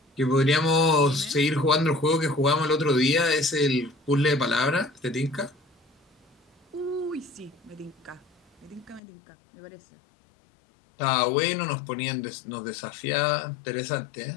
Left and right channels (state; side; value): drops out; right; at 9.0 s